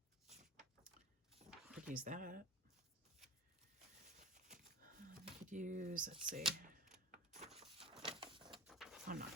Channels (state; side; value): normal; both; correlation 0.33